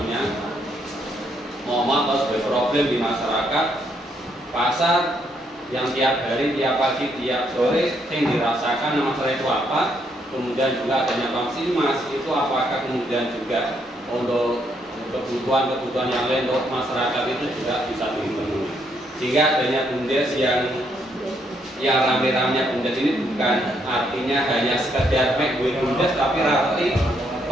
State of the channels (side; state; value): both; normal; correlation 0.73